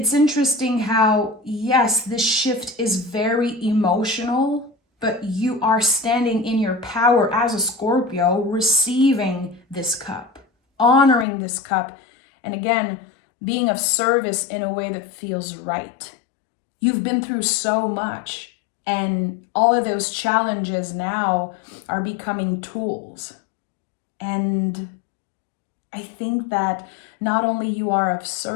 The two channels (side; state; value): right; drops out; at 11.2 s